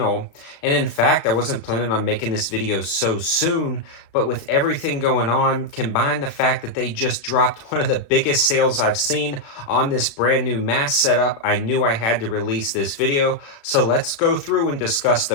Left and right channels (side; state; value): right; late; 36 ms